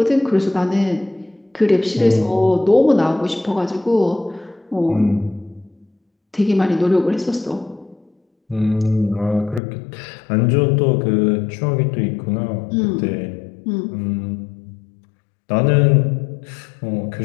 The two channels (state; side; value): drops out; right; at 9.6 s